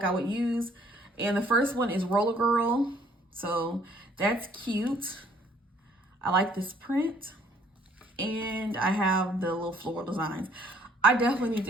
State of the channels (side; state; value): both; normal; correlation 0.61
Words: I would use. And the first one is Roller Girl, so that's cute. I like this print, and I have the little floral designs. I definitely need